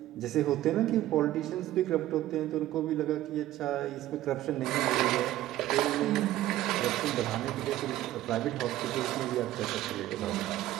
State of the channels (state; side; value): quieter; left; 14.5 dB